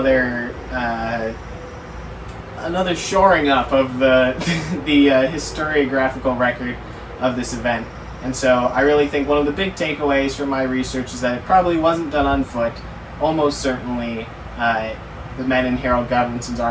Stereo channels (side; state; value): both; identical; correlation 1.00